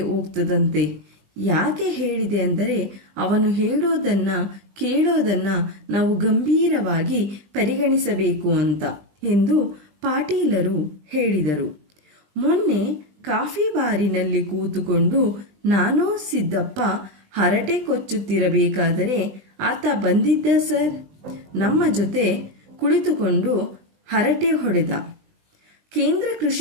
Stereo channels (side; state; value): left; late; 20 ms